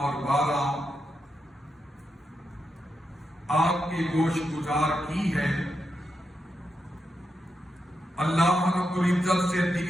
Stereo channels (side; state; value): both; normal; correlation 0.85